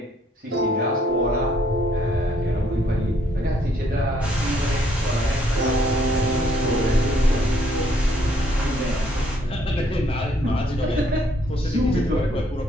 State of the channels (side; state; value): both; normal; correlation 0.67